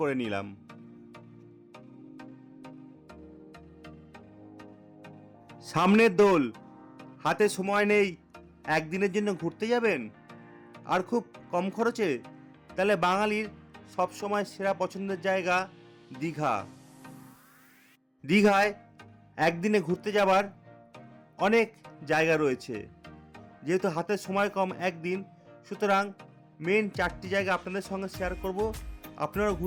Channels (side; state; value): both; identical; correlation 1.00